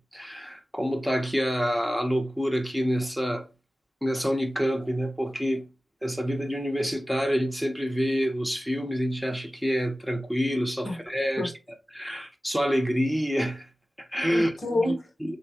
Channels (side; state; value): both; normal; correlation 0.96